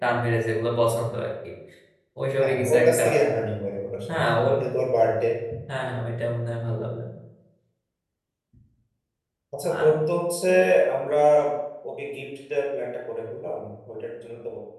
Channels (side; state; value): both; identical; correlation 1.00